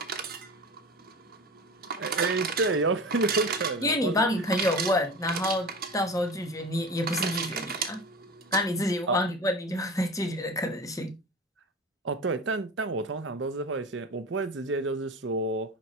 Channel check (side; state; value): both; normal; correlation 0.32